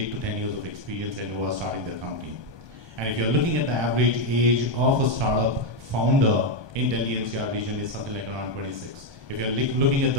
to 10 years of experience and who are starting their company. And if you're looking at the average age of a startup founder in Delhi NCR region, is something like around 26. If you're looking at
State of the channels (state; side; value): late; left; 1.2 ms